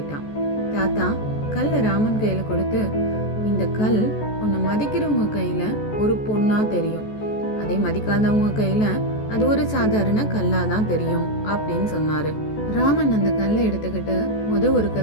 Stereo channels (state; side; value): late; right; 14 ms